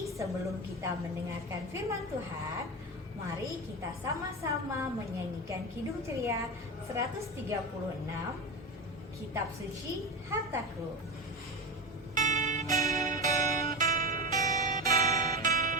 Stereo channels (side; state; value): both; normal; correlation 0.22